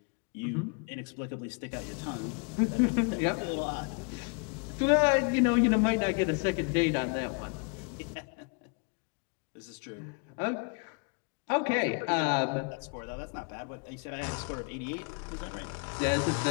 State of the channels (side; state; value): right; quieter; 34.6 dB